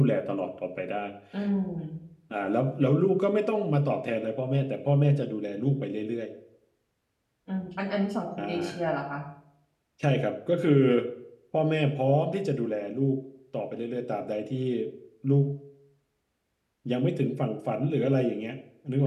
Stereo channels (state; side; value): identical; both; correlation 1.00